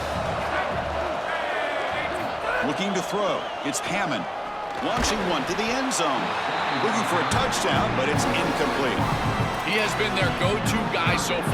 Looking to throw. It's Hammond. Launching one to the end zone. Looking for a touchdown, but it's incomplete. He has been their go-to guy so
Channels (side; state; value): both; identical; correlation 1.00